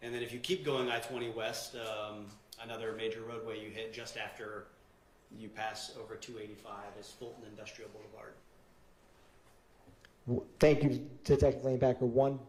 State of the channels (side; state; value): both; identical; correlation 1.00